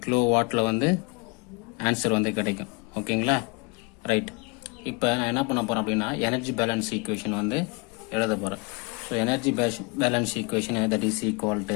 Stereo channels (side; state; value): right; quieter; 30.0 dB